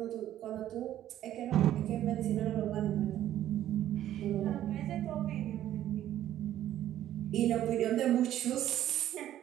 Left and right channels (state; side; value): quieter; left; 12.2 dB